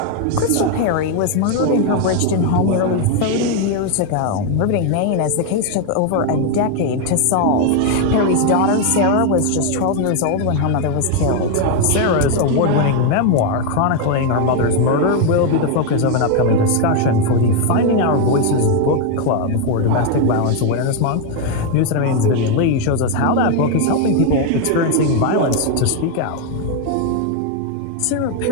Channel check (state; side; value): different; both; correlation 0.01